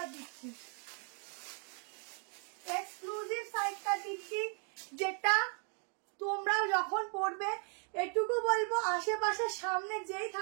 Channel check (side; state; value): left; quieter; 39.0 dB